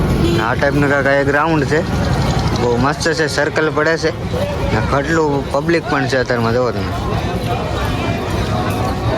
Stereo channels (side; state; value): both; identical; correlation 1.00